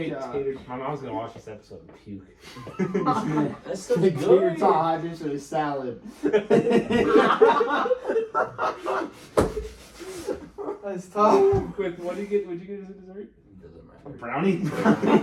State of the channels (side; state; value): both; identical; correlation 1.00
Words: god. tater. My mom's gonna watch this episode and puke. That's such Big tater good. tot hot dish with a salad. That's tough. Quick, what do you get? What'd you get as a dessert? Doesn't A matter. brownie.